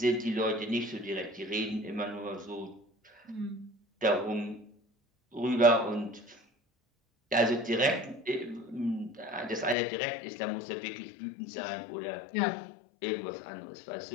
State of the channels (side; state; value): right; drops out; at 9.8 s